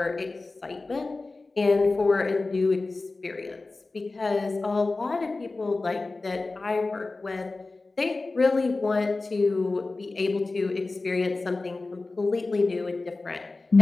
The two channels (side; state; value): right; quieter; 3.4 dB